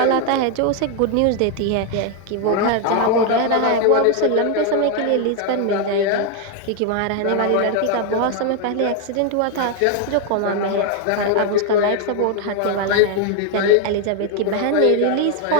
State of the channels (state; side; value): different; both; correlation 0.01